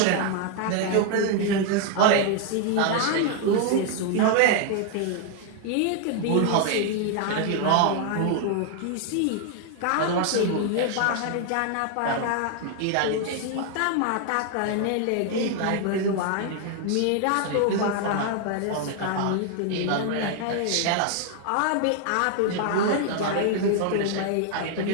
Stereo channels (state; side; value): different; both; correlation 0.00